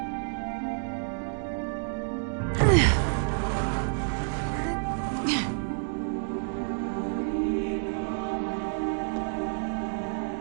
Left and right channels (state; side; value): silent; left; digital silence